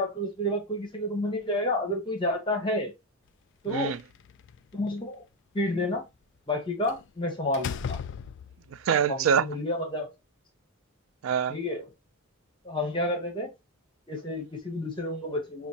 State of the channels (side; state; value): both; normal; correlation 0.00